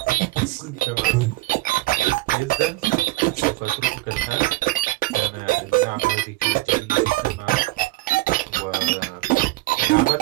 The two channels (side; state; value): left; quieter; 19.5 dB